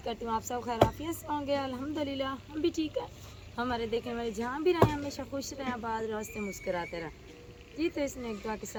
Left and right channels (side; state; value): both; identical; correlation 1.00